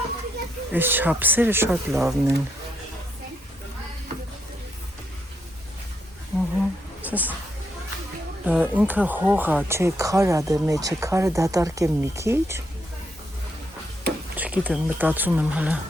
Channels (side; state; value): both; normal; correlation 0.77